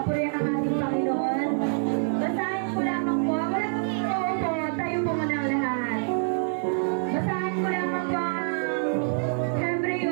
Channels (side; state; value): left; silent; 61 dB below the other